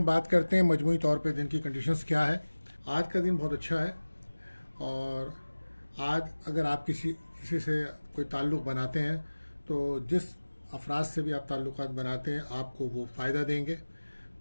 बात करते हैं मजमूई तौर पे दिन की कंडीशंस क्या है। आज का दिन बहुत अच्छा है और आज अगर आप किसी से कोई ताल्लुक़ बनाते हैं तो जिस अफराद से भी आप ताल्लुक़ात बनाते हैं आपको वो फ़ायदा देंगे।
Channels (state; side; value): inverted; both; correlation -1.00